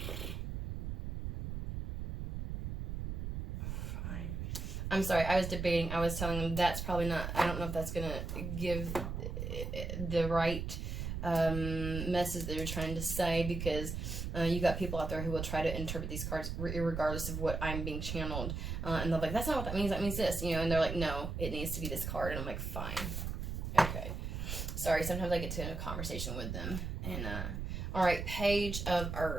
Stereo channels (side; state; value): right; noise; rumble, 4 dB below the sound